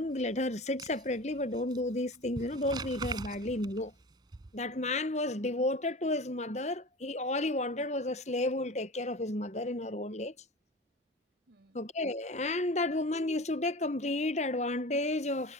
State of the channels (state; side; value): normal; both; correlation 0.34